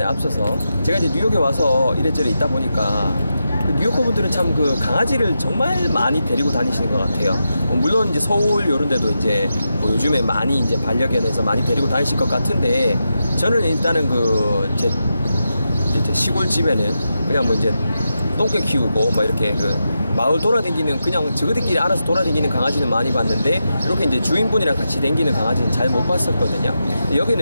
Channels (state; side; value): inverted; both; correlation -0.88